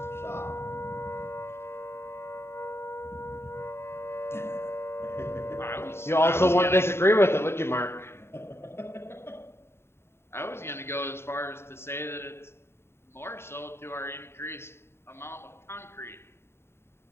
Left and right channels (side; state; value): right; late; 0.12 ms